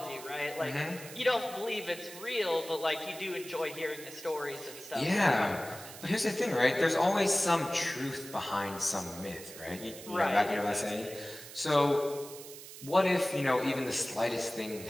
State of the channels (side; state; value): right; noise; hiss, 14 dB below the sound